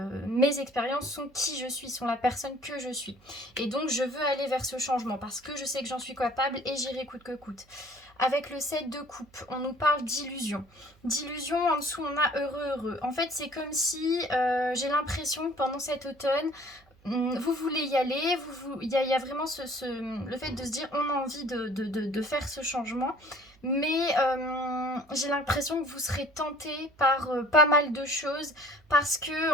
mes expériences sont qui je suis, sont la personne que je suis. Et donc je veux aller vers ce changement parce que je sais que j'en suis capable et j'irai coûte que coûte. Avec le 7 de coupe, on nous parle d'illusion. D'illusion, en dessous on a heureux. En fait c'est comme si j'ai l'impression que pendant cet automne, vous voulez y aller, il y a vraiment le fait de se dire on a envie de faire ce changement, mais j'ai l'impression que vous serez tenté par pas mal de choses, parce que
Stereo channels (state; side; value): noise; right; hum, 30 dB below the sound